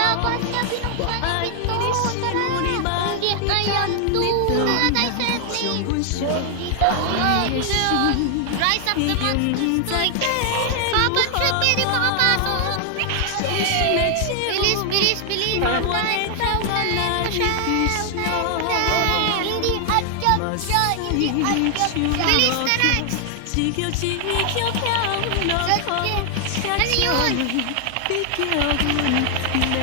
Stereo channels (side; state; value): both; different; correlation 0.00